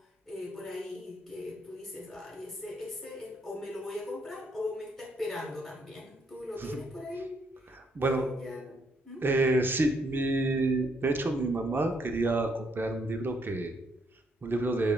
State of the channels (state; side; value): normal; both; correlation 0.73